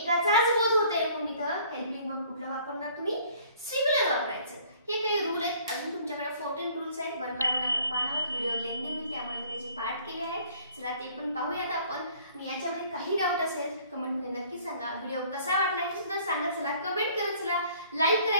बोध होते, म्हणून इथं हेल्पिंग वर्ब कुठलं वापरणार तुम्ही? सिंग्युलर वापरायचं. हे काही रूल आहेत. अजून तुमच्याकडे 14 रूल्स आहेत. वन बाय वन आपण पाहणार आहोत. व्हिडिओ लेंदी होईल त्यामुळे मी त्याचे पाठ केले आहेत. चला ते पण पाहूयात आपण. आणि याच्यामध्ये काही डाऊट असेल कमेंटमध्ये नक्की सांगा. व्हिडिओ कसा वाटला हे सुद्धा सांगा. चला कमेंट करत चला. लाईक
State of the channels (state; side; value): inverted; both; correlation -0.56